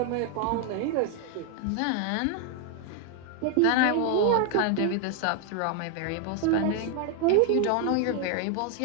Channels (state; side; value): different; both; correlation 0.01